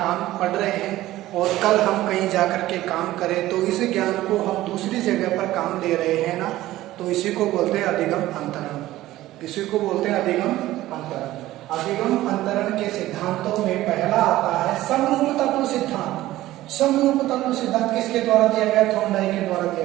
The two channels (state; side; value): quieter; left; 15.8 dB